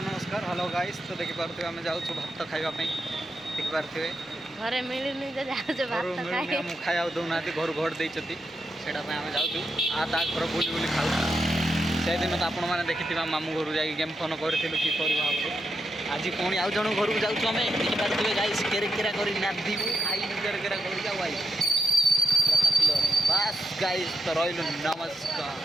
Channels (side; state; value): both; normal; correlation 0.85